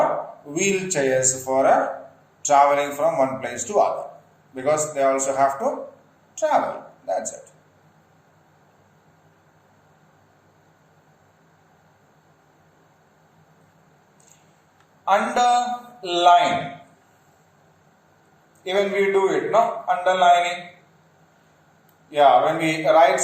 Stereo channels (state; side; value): identical; both; correlation 1.00